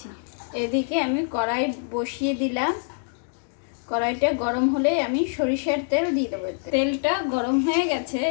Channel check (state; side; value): silent; right; digital silence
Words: এদিকে আমি কড়াই বসিয়ে দিলাম, কড়াইটা গরম হলে আমি সরিষার তেল দিয়ে দেবো। তেলটা গরম হয়ে গেছে,